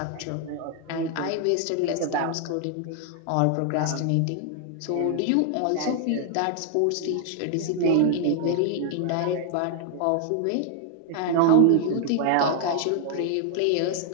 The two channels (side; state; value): both; different; correlation 0.00